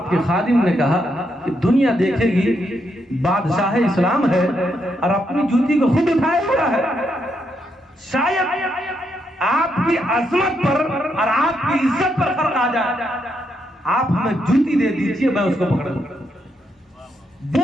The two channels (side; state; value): both; normal; correlation 0.79